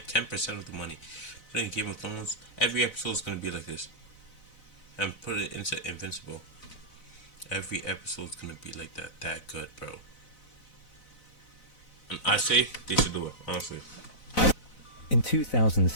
10% of the money. Put it in Game of Thrones. Every episode is gonna be like this, and put it into Invincible. Every episode is gonna be like that. That good, bro. And I say they should do it, honestly. In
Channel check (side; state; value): right; late; 4.0 ms